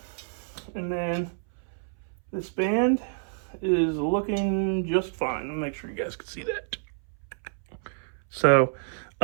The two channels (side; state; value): left; silent; 60 dB below the other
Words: And then this band is looking just fine. I'll make sure you guys can see that. So